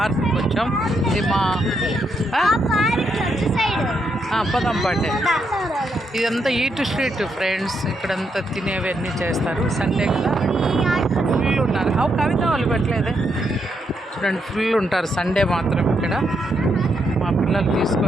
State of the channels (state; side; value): normal; both; correlation 0.79